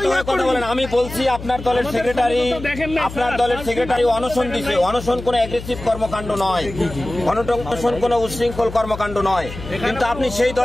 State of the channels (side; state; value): left; noise; hum, 12 dB below the sound